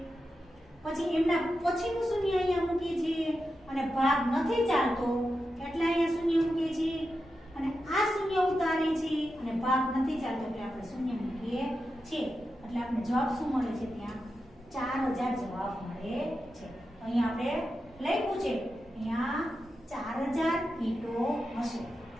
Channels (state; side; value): normal; both; correlation 0.89